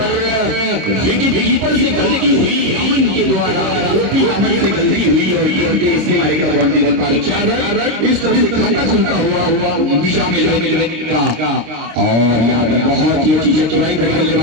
विकेट कीपर से गलती हुई अमन के द्वारा, ओपी अमन से गलती हुई और ये इससे मारेगा बाउंड्री पर 4 रन। इस तरह से खाता खुलता हुआ निशा में का और यहाँ पर बहुत ही अच्छी चतुराई भरी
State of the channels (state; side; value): late; left; 26 ms